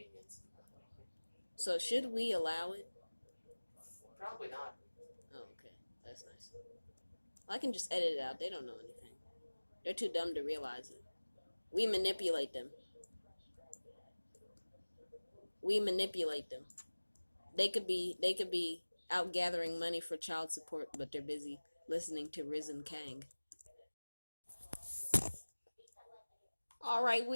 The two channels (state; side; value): inverted; both; correlation -1.00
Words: So should we allow it? Probably not. Oh, okay. That's nice. Well, I can just edit it out. They don't know anything. They're too dumb to realize it. We manipulate them. They could be out gathering money for child support, but they're busy listening to Rizzen Kang. All right,